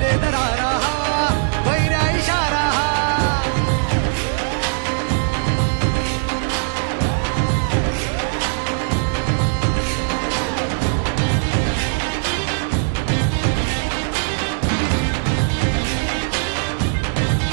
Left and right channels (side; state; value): left; silent; digital silence